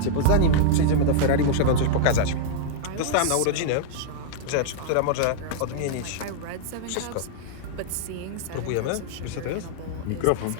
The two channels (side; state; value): both; different; correlation -0.01